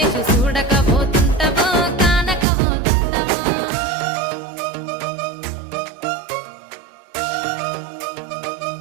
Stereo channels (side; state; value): left; drops out; at 2.5 s